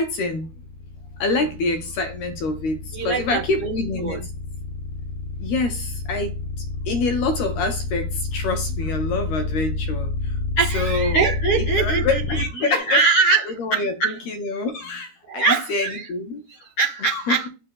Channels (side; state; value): right; late; 13 ms